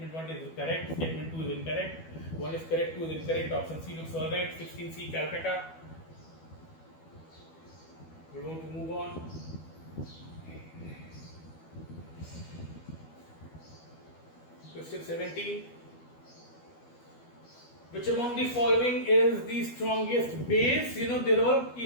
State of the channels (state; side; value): late; right; 12 ms